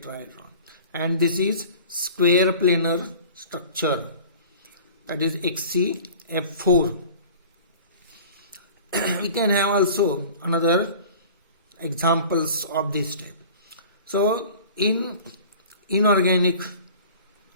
And this is square planar structure, that is XCF4. We can have also another examples of this type. So in inorganic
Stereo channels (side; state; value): both; inverted; correlation -0.43